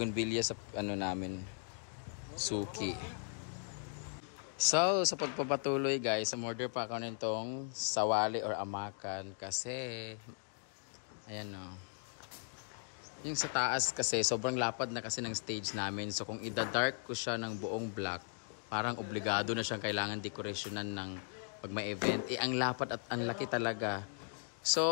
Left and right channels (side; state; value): right; silent; 53 dB below the other